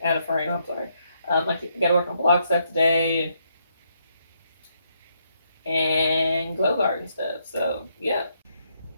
out of frame. I'm sorry. I got to work on blog stuff today and glow garden stuff. So yeah.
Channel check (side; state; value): both; inverted; correlation -0.75